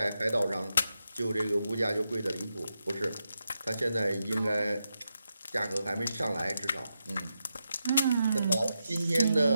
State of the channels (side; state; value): both; inverted; correlation -0.87